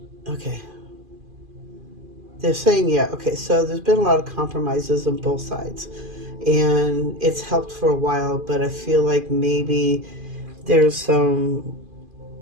okay. They're saying, yeah, okay, so there's been a lot of compromises on both sides. And it's helped for a while, but I feel like maybe there's some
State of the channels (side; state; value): left; late; 2.5 ms